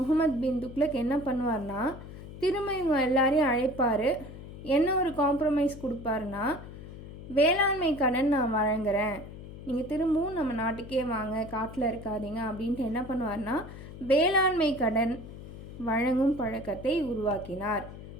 பின் துக்ளக் என்ன பண்ணுவார்னா திரும்ப இவங்க எல்லாரையும் அழைப்பார். என்ன ஒரு காம்ப்ரமைஸ் கொடுப்பாருன்னா, வேளாண்மை கடன் நான் வழங்குறேன், நீங்கள் திரும்பவும் நம்ம நாட்டுக்கே வாங்க, காட்டில் இருக்காதீங்க அப்படின்ட்டு என்ன பண்ணுவார்னா வேளாண்மை கடன் வழங்கும் பழக்கத்தை உருவாக்கினார்.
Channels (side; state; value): left; noise; hum, 13 dB below the sound